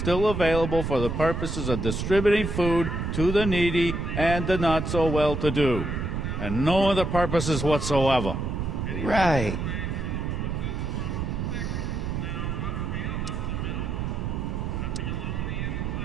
available for the purposes of distributing food to the needy and the not-so-well-to-do. and no other purposes whatsoever. Right.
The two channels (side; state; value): right; noise; rumble, 2 dB below the sound